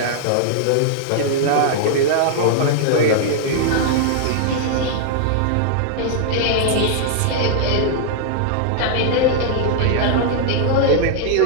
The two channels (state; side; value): different; both; correlation -0.01